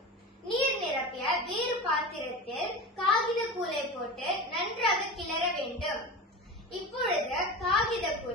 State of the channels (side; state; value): both; normal; correlation 0.28